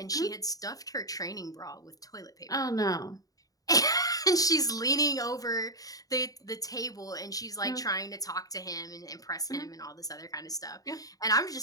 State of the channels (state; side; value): late; right; 0.18 ms